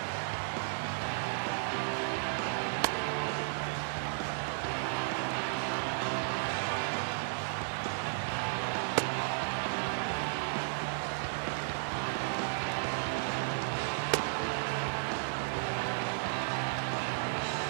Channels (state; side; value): silent; left; 55 dB below the other